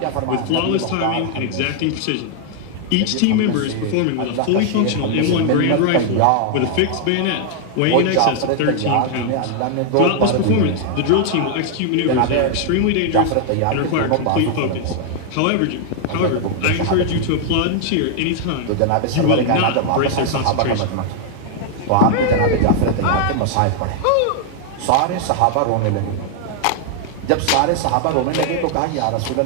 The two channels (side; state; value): both; different; correlation 0.00